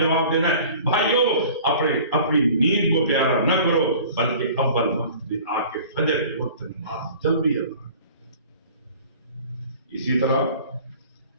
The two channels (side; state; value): both; inverted; correlation -0.46